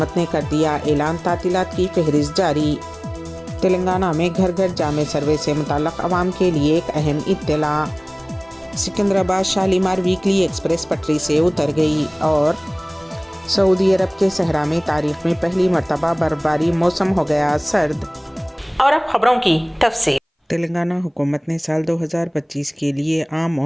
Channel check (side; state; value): both; identical; correlation 1.00